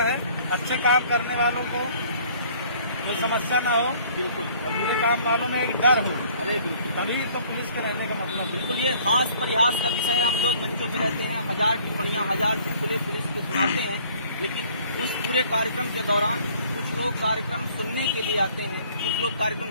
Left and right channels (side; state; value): both; inverted; correlation -0.56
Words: है। अच्छे काम करने वालों को कोई समस्या ना हो, बिल्कुल, और बुरे काम वालों में एक डर हो, अरे बिल्कुल, तभी तो पुलिस के रहने का मतलब। बिल्कुल ये हास परिहास का विषय है। हम लोग मंचों पे रहते हैं, 1000 टिप्पणियां, 1000 चुटकुले पुलिस को सुनाते हैं, लेकिन उस पूरे कार्यक्रम के दौरान कुछ लोग कार्यक्रम सुनने के लिए आते हैं, कुछ लोग